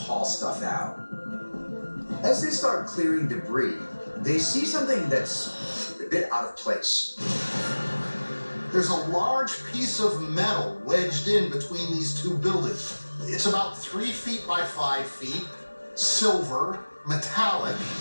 stuff out. As they start clearing debris, they see something that's a bit out of place. There's a large piece of metal wedged in between these two buildings. It's about 3 feet by 5 feet, silver, metallic,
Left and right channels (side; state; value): both; inverted; correlation -1.00